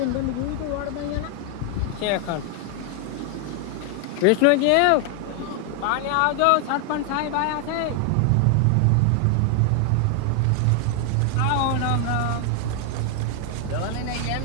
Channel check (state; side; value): different; both; correlation 0.00